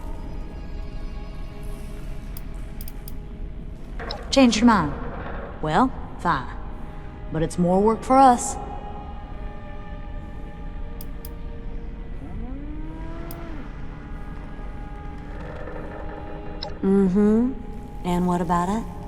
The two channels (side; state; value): both; identical; correlation 1.00